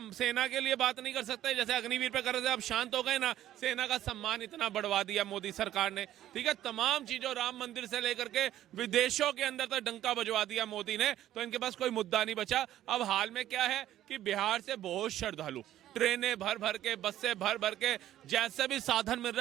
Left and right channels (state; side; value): quieter; left; 12.8 dB